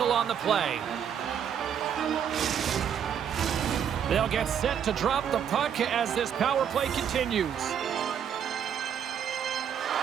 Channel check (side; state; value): left; quieter; 8.4 dB